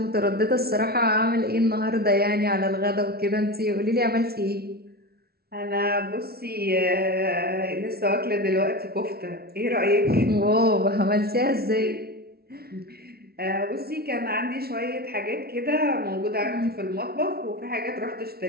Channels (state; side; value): late; left; 0.45 ms